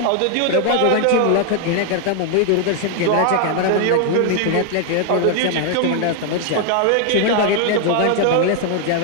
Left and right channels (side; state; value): both; different; correlation 0.00